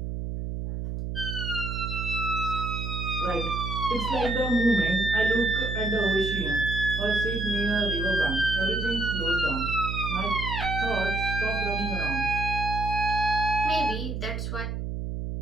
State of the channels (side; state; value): right; noise; hum, 4 dB below the sound